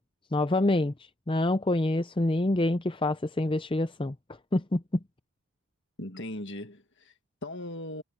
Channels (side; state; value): both; normal; correlation 0.76